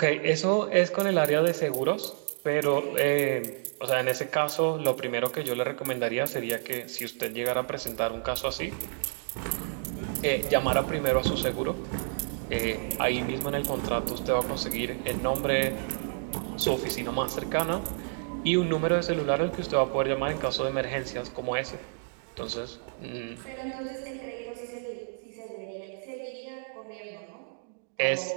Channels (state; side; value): silent; left; digital silence